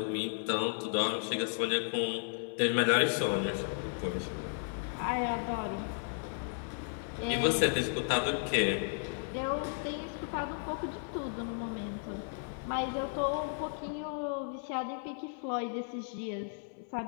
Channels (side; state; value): right; silent; 55 dB below the other